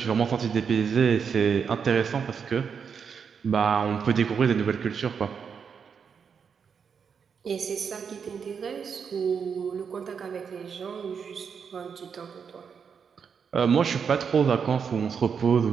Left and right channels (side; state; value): left; quieter; 6.6 dB